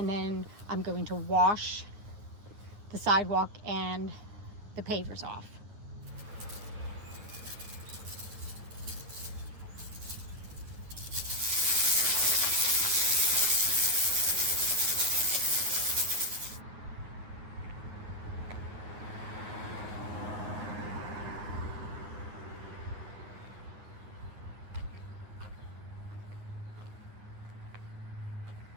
then I'm going to wash the sidewalk and the pavers off.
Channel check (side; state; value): left; late; 9.6 ms